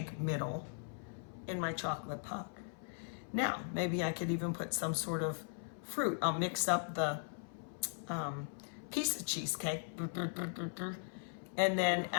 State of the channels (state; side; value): silent; right; 52 dB below the other